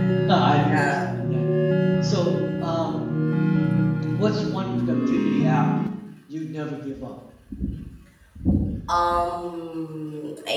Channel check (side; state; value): both; identical; correlation 1.00